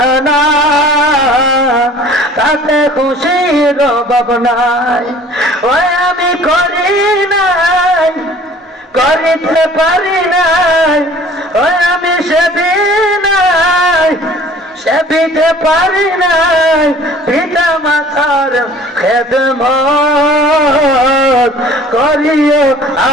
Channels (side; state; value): both; normal; correlation 0.50